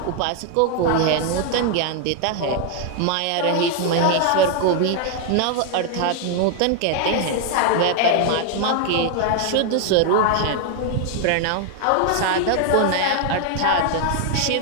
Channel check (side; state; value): both; different; correlation 0.00